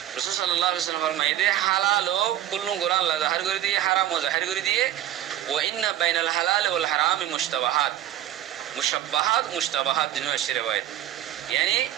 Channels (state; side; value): quieter; left; 12.4 dB